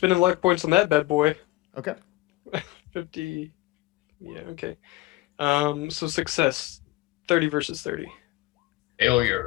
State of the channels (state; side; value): quieter; right; 19.5 dB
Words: luck points on that bad boy. Okay. 50. Yeah, okay. So success. 30 versus 30.